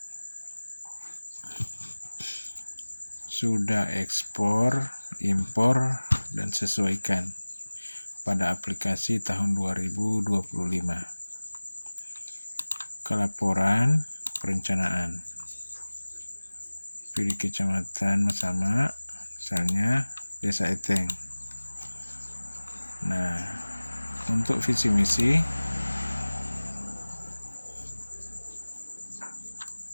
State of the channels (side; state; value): both; inverted; correlation -1.00